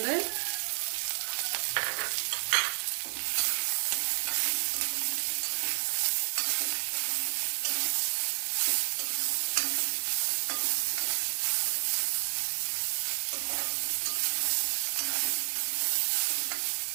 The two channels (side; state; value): left; silent; digital silence